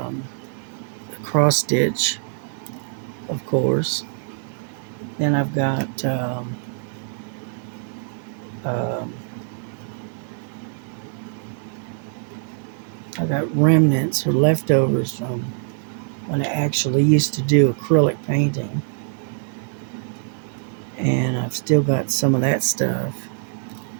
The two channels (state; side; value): silent; left; 63 dB below the other